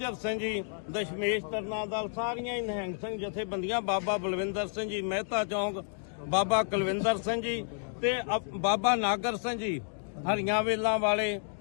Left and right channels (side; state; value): right; silent; digital silence